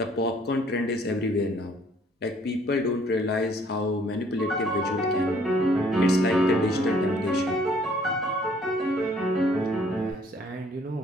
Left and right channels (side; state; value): both; normal; correlation 0.61